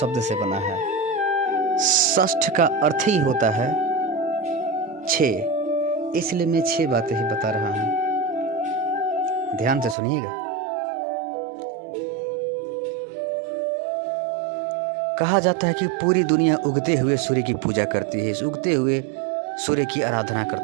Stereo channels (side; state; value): left; drops out; at 10.0 s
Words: से बना है। षष्ठ का अर्थ ही होता है 6, इसलिए मैं 6 बातें ही बता रहा हूं। ध्यान से सुनिएगा। कहा जाता है कि पूरी दुनिया उगते हुए सूर्य की पूजा करती है, इस उगते हुए सूर्य की आराधना